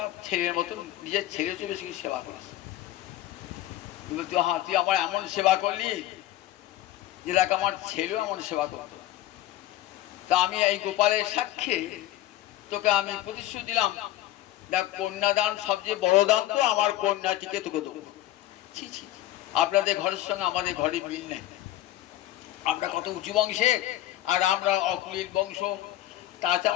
ছেলের মতন নিজের ছেলে চেয়ে বেশি সেবা করেছে। তুই আমার এমন সেবা করলি যে দেখ আমার ছেলেও এমন সেবা করতো, তা আমি এই গোপালের সাক্ষী তোকে আমি প্রতিশ্রুতি দিলাম, দেখ কন্যাদান সবচেয়ে বড় দান তো, আমার কন্যাটিকে তোকে দেবো। ছি ছি, আপনাদের ঘরের সঙ্গে আমাদের ঘরে মিল নেই, আমরা কত উঁচু বংশে, আর আমরা অকুলীর বংশ, তাতে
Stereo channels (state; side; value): quieter; right; 14.3 dB